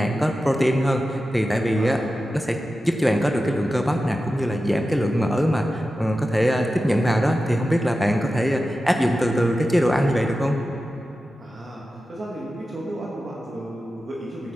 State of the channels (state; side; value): normal; both; correlation 0.93